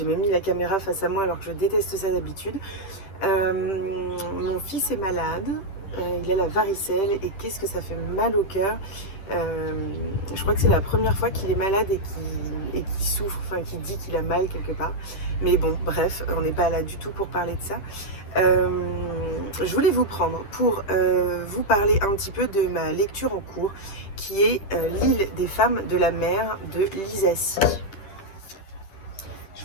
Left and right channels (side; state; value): right; late; 10 ms